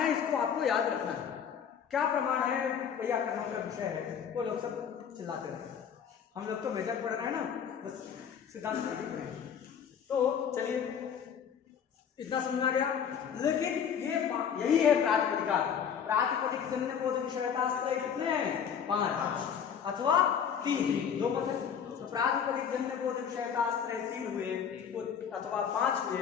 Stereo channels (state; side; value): quieter; right; 7.7 dB